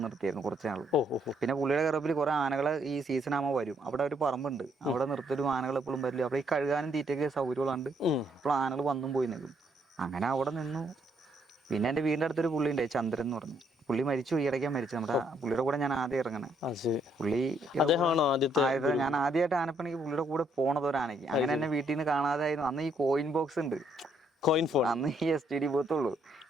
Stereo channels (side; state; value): both; normal; correlation 0.71